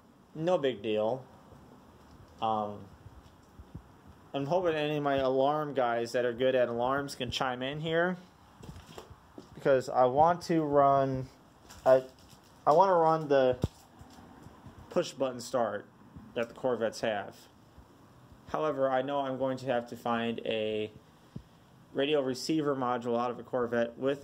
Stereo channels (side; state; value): both; identical; correlation 1.00